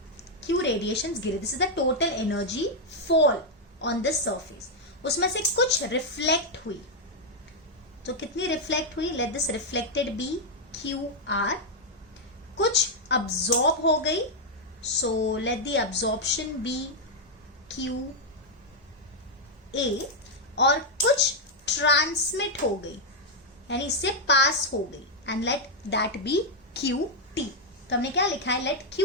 Q रेडिएशंस गिरे, this is the total energy fall on this surface. उसमें से कुछ रिफ्लेक्ट हुई, तो कितनी रिफ्लेक्ट हुई? Let this reflected be QR। कुछ अब्सॉर्ब हो गई, so let the absorption be QA। और कुछ ट्रांसमिट हो गई, यानी इससे पास हो गई, and let that be QT। तो हमने क्या लिखा है? Let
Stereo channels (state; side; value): normal; both; correlation -0.01